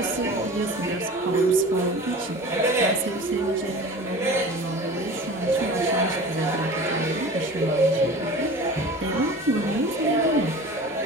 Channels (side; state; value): both; normal; correlation 0.38